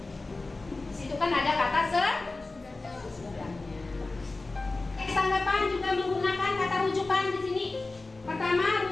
Di situ kan ada kata sesudahnya. Teks tanggapan juga menggunakan kata rujukan di sini. Pertama,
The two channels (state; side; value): quieter; right; 3.4 dB